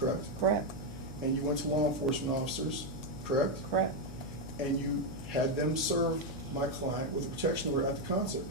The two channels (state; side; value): noise; left; hum, 11 dB below the sound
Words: Correct, And you went to law enforcement officers, correct? correct, And you had them serve my client with a protection order at the concert,